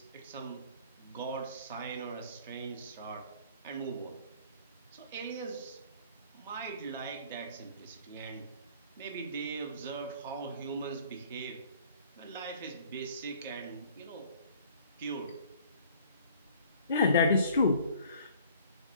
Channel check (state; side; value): inverted; both; correlation -0.53